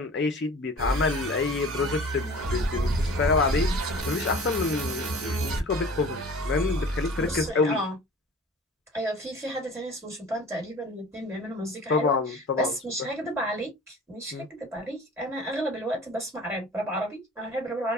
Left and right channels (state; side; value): normal; both; correlation 0.43